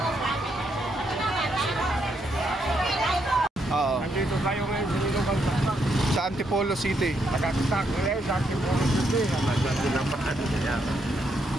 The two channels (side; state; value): both; normal; correlation 0.77